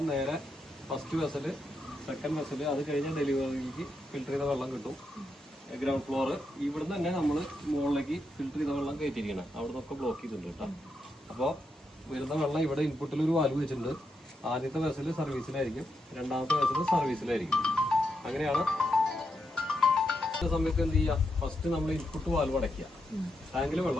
നേരെ ഫസ്റ്റ് വെസല്, സെക്കൻഡ് വെസല്, അത് കഴിഞ്ഞ ഡെലിവറിക്ക് ഫിൽറ്റർ ചെയ്ത വെള്ളം കിട്ടും. ഗ്രൗണ്ട് ഫ്ലോർ ഇവിടുന്ന് തന്നെ നമ്മൾ മുകളിലേക്ക് ഫിൽറ്റർ ചെയ്ത വെള്ളം കയറ്റിയിരിക്കണം. അവിടെ നിന്നൊക്കെ ബ്ലോക്ക് ചെയ്തിട്ടുണ്ട് കേട്ടോ. അപ്പോൾ വരുന്ന വെള്ളം ഇവിടെ ഇൻപുട്ടിൽ ഒരു വാൽവ് വെച്ചിട്ടുണ്ട്. ആദ്യത്തെ വെസല് സർവീസിലായിരിക്കും, രണ്ടാമത്തെ വെസല് സർവീസിലായിരിക്കും. അങ്ങനെയാണ്. സമയത്ത് എന്ത് ചെയ്യുക, ഫസ്റ്റ് നമ്മൾ ഇൻപുട്ട് വാൽവ് അടയ്ക്കുക, ടാങ്കിൽ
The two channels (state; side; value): normal; both; correlation 0.83